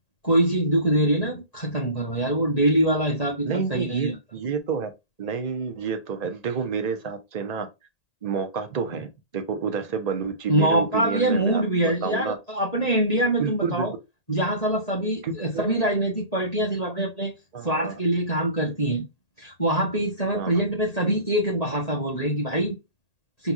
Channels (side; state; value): right; late; 1.8 ms